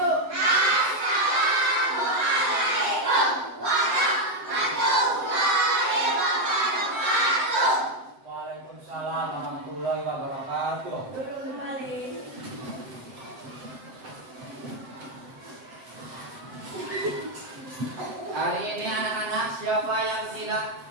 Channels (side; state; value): left; late; 7.7 ms